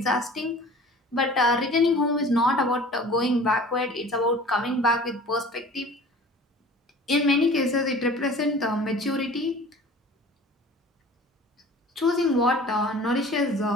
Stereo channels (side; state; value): both; normal; correlation 0.44